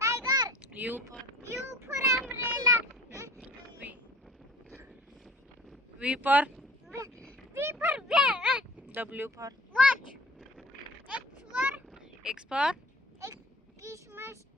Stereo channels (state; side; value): normal; both; correlation 0.46